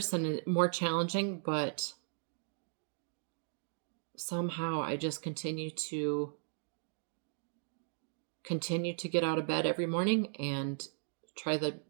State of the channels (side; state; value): left; silent; digital silence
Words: and more challenging, but somehow I just continue to get out of bed every morning and try to